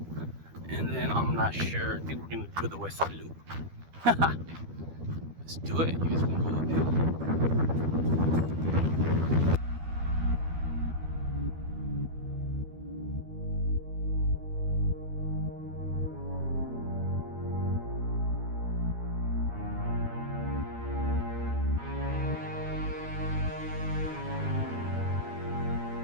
And then I'm not sure. I think we're gonna do the west side loop. Let's do it. You guys wanna go uphill?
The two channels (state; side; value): late; left; 12 ms